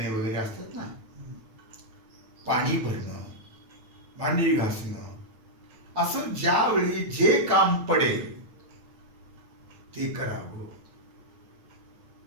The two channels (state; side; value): late; left; 9.1 ms